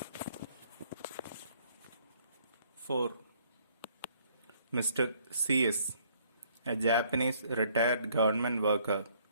4. Mr. C.S., a Japanese retired government worker,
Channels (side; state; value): both; inverted; correlation -0.64